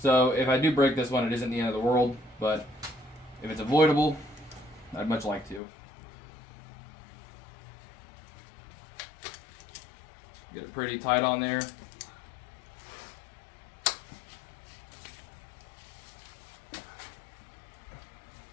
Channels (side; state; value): right; drops out; at 5.6 s